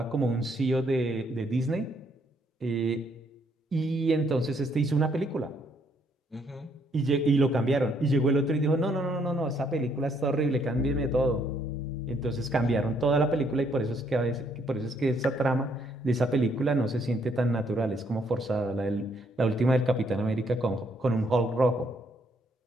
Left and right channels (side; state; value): both; normal; correlation 0.70